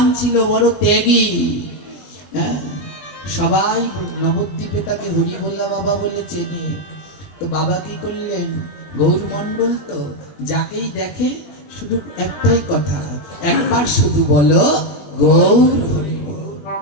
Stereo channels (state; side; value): late; right; 21 ms